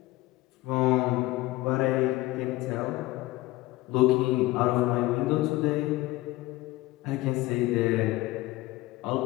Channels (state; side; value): quieter; right; 18.7 dB